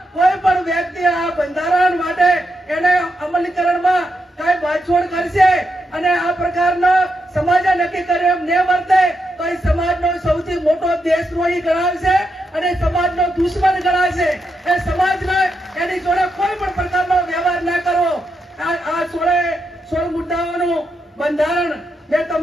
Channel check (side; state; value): both; normal; correlation 0.83